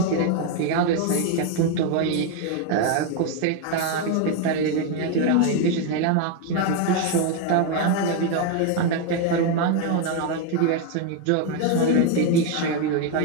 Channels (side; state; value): both; different; correlation 0.01